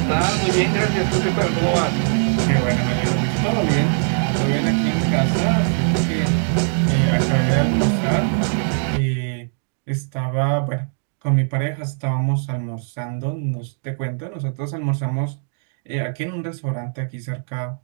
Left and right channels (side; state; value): left; silent; digital silence